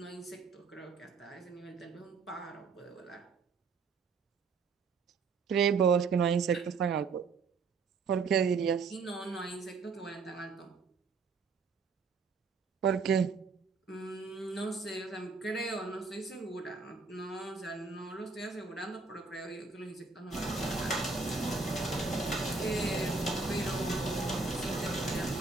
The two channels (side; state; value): left; quieter; 4.7 dB